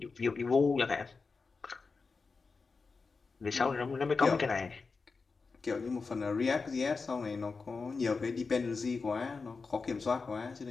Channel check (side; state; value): right; quieter; 4.5 dB